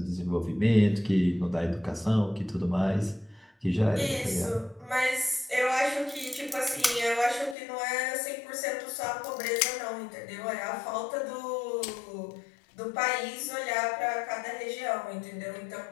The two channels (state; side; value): drops out; right; at 7.6 s